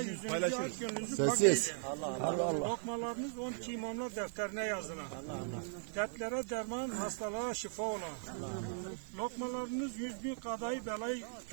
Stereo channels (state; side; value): silent; left; digital silence